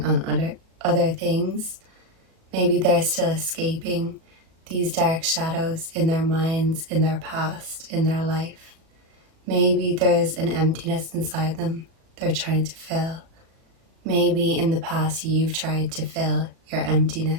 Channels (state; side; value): late; left; 37 ms